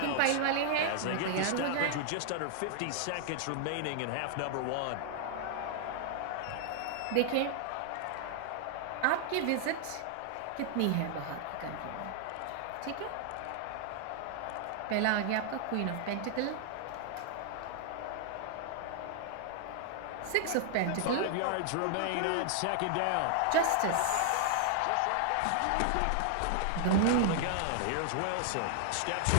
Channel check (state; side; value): different; both; correlation 0.00